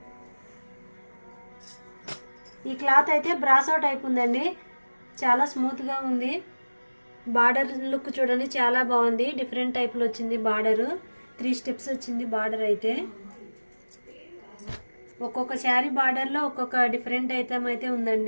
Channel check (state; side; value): inverted; both; correlation -1.00